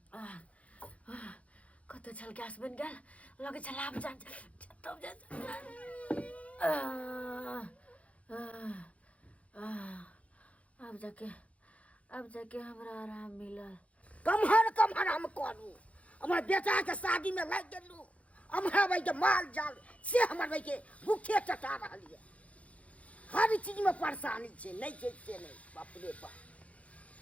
कतो छल गैस बन गया लगे छल आप जान तब अब जाके हमरा आराम मिलल कमहर हम करू हमर बेटा के शादी में लग गेलू हमरा भाई के माल जाल से हमर भाई के भूखे टटा रहलिए हर चीज में परेशानी छे नहीं छे से नहीं बाप रे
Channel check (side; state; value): right; late; 0.065 ms